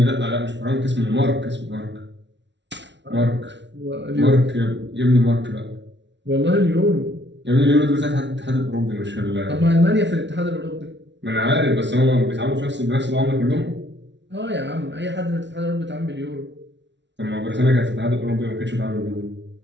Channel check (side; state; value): left; late; 0.52 ms